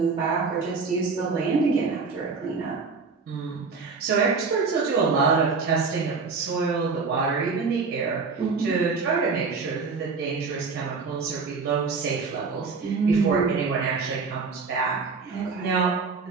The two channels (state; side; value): quieter; left; 4.7 dB